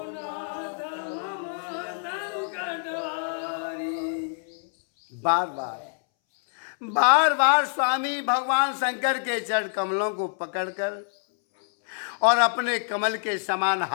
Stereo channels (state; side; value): silent; right; 61 dB below the other